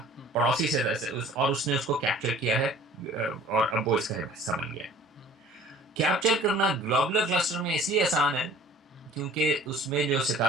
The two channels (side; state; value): both; normal; correlation 0.49